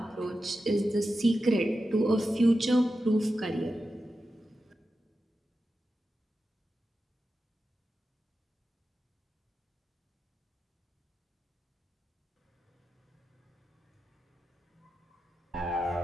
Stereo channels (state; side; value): normal; both; correlation 0.91